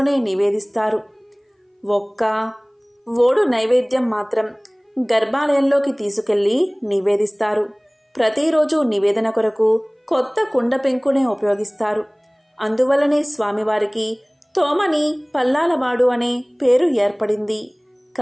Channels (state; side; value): identical; both; correlation 1.00